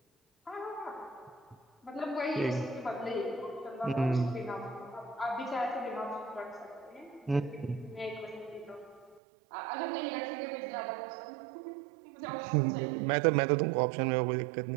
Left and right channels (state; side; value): drops out; left; at 9.2 s